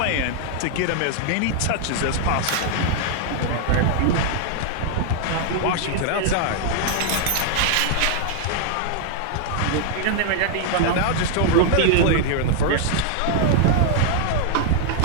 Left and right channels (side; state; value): both; different; correlation 0.00